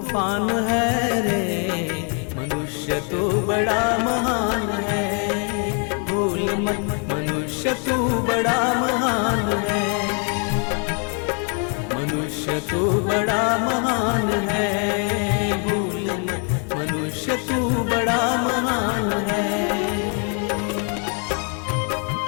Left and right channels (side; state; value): right; quieter; 39.9 dB